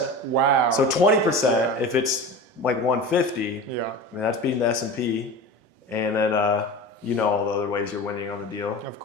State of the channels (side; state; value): both; normal; correlation 0.31